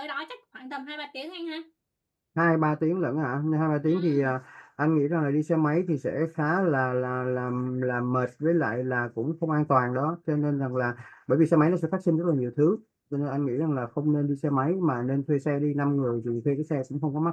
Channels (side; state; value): both; identical; correlation 1.00